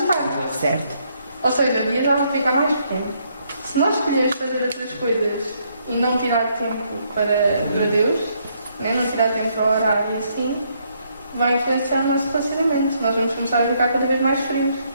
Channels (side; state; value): both; inverted; correlation -0.72